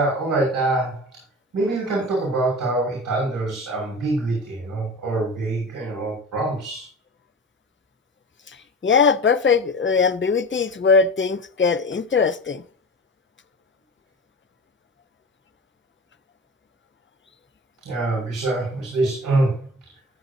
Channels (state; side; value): normal; both; correlation 0.31